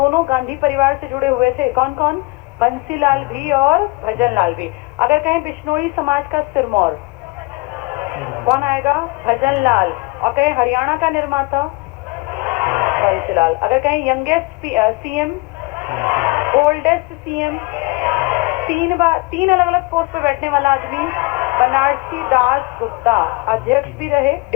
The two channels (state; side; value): quieter; right; 25.7 dB